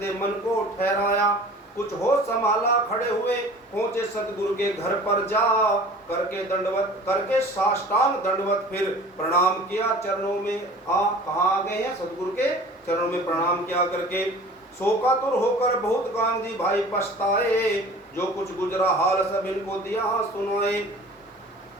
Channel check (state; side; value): normal; both; correlation 0.44